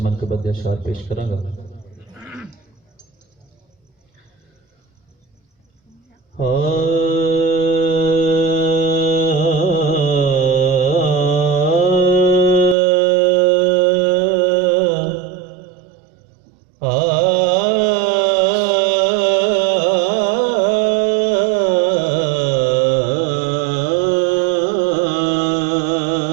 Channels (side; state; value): left; drops out; at 12.8 s